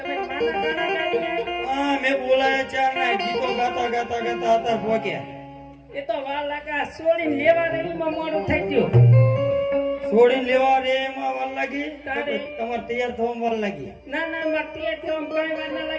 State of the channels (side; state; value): both; identical; correlation 1.00